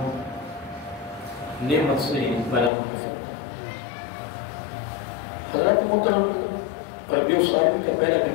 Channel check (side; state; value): right; drops out; at 2.7 s